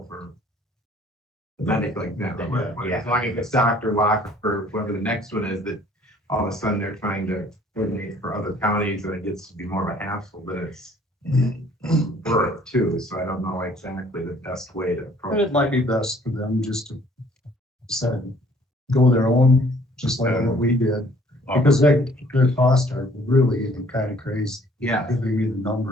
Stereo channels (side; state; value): both; normal; correlation 0.57